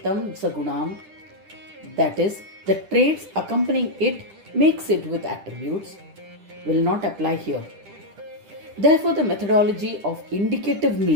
Sagunam, that is, the traits accompanying it makes it with attributes, will not apply here. Therefore, the methodology of indicative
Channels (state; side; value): late; left; 10 ms